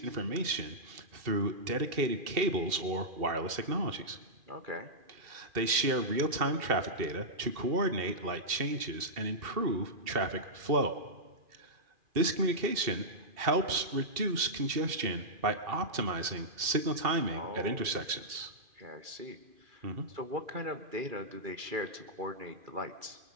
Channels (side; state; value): left; late; 2.7 ms